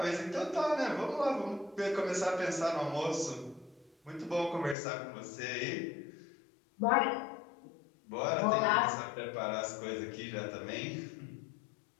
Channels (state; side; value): drops out; right; at 4.8 s